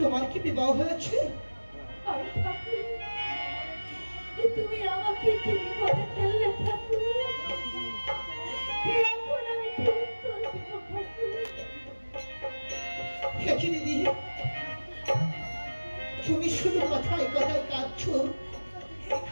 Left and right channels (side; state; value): both; inverted; correlation -1.00